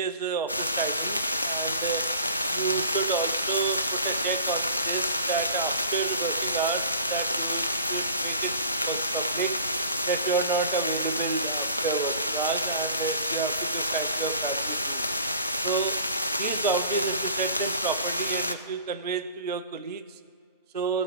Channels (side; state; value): both; inverted; correlation -0.46